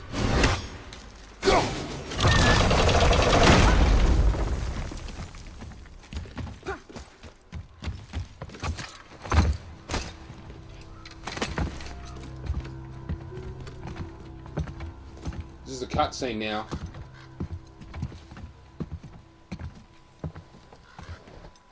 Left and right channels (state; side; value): identical; both; correlation 1.00